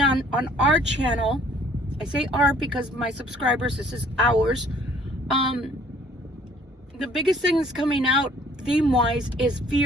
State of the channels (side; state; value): both; normal; correlation 0.58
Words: on our channel, I say our because my subscribers, this is ours. The biggest thing that's coming out theme-wise is